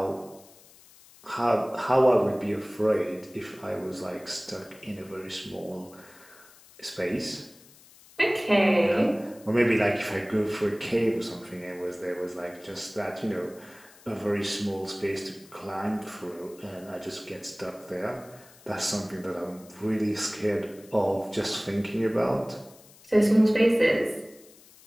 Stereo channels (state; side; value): noise; left; hiss, 24 dB below the sound